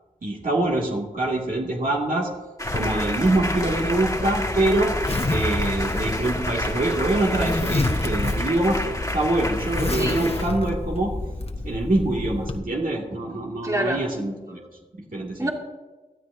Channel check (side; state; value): both; normal; correlation 0.71